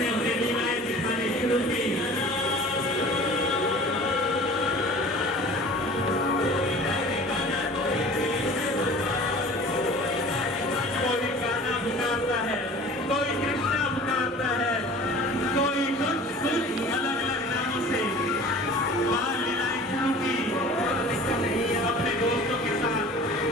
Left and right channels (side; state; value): both; normal; correlation 0.43